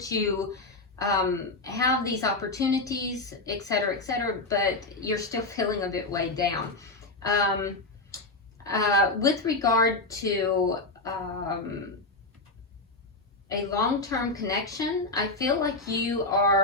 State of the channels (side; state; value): right; quieter; 3.1 dB